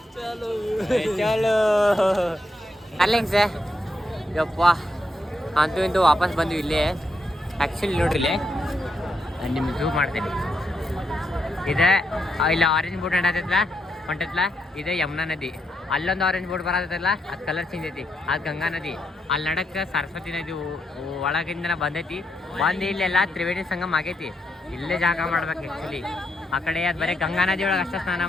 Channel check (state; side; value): normal; both; correlation 0.81